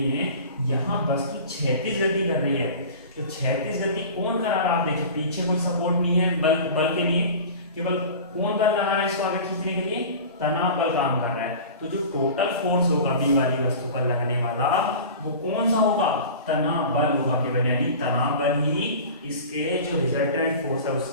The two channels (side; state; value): both; inverted; correlation -0.37